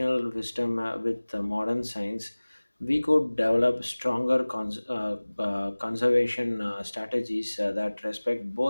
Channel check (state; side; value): inverted; both; correlation -1.00